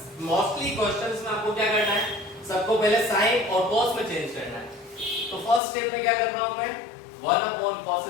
मोस्टली क्वेश्चंस में आपको क्या करना है, सबको पहले साइन और कॉस में चेंज करना है। तो फर्स्ट स्टेप में क्या कर रहा हूं मैं, 1 upon cos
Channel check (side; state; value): right; drops out; at 5.6 s